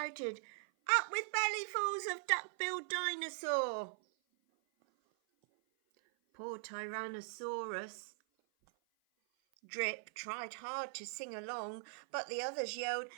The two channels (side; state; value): left; silent; 51 dB below the other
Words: up with bellyfuls of duck-billed dinosaur. Poor Tyrannosaurus Drip tried hard to sing along, but the others yelled,